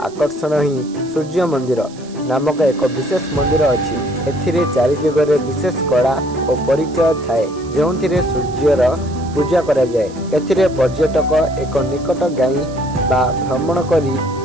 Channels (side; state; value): right; noise; hiss, 22 dB below the sound